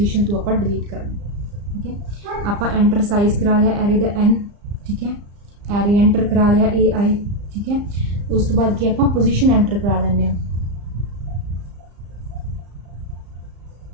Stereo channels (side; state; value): left; late; 35 ms